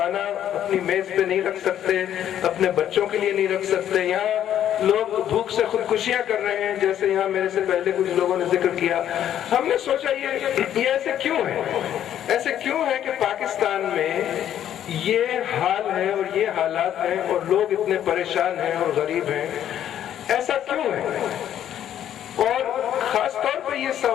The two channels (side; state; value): right; quieter; 10.7 dB